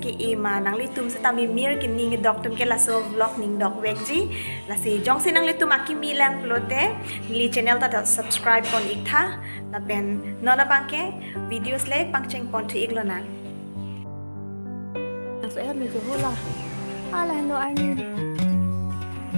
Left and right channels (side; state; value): both; inverted; correlation -1.00